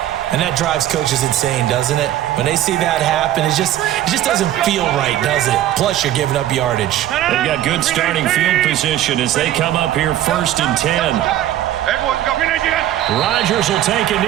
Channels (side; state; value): left; quieter; 12.8 dB